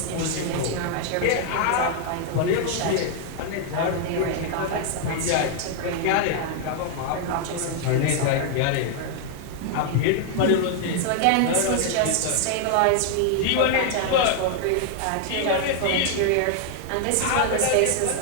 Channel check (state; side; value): different; both; correlation 0.00